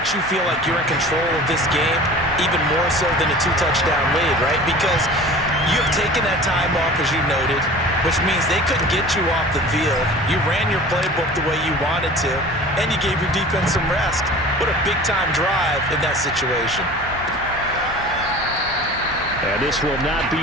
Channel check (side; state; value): both; normal; correlation 0.40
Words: you feel like you're in control of this game, even more so than a 2-touchdown lead, right? Because you have taken that time off, as you noted, which means they couldn't get you off the field. You ran your playbook the way you wanted to, and you gave your defense some rest. What a big-time drive in that situation. And this will not be